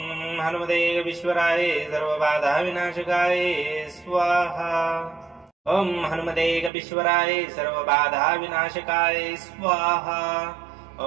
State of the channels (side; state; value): left; drops out; at 6.7 s